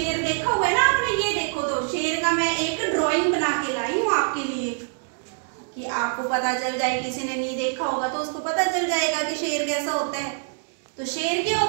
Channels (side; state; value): left; silent; digital silence